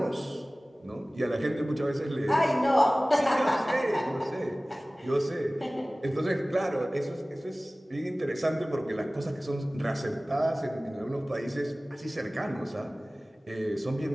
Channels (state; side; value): normal; both; correlation 0.98